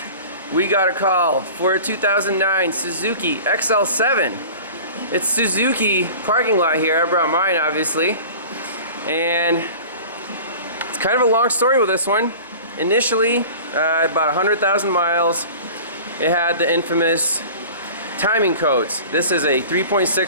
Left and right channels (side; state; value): both; inverted; correlation -0.40